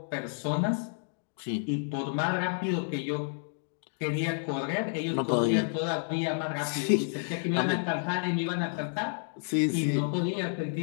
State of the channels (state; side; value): silent; right; digital silence